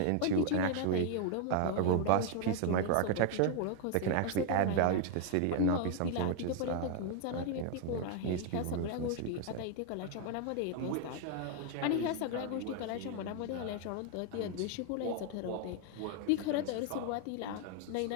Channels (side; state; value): both; different; correlation 0.00